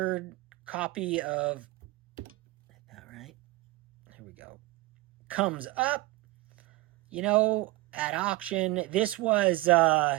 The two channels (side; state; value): left; quieter; 20.2 dB